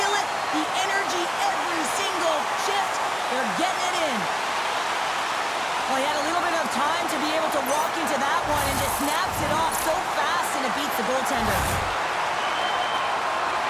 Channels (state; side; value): identical; both; correlation 1.00